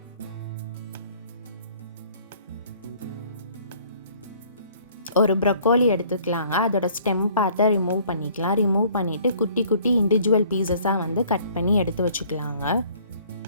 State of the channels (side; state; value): both; inverted; correlation -0.57